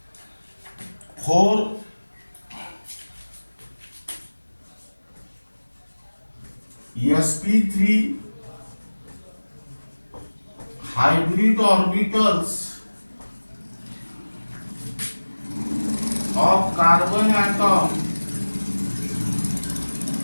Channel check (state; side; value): inverted; both; correlation -1.00